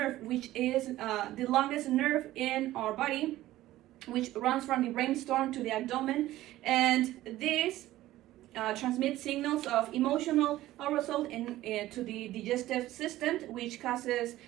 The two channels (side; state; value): left; quieter; 15.4 dB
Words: which is the longest nerve in our body, which runs from the brainstem to the abdomen, and this transmit signals of emotional arousal to the digestive system, which causes